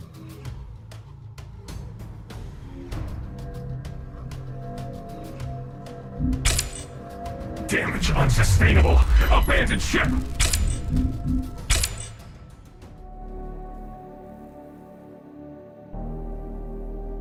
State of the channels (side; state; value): both; identical; correlation 1.00